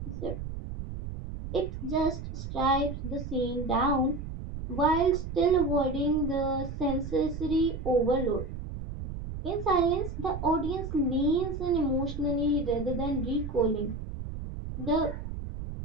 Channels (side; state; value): right; noise; rumble, 7 dB below the sound